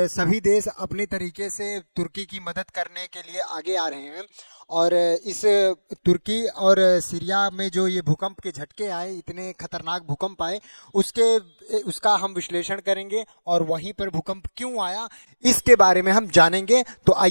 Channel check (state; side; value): inverted; both; correlation -1.00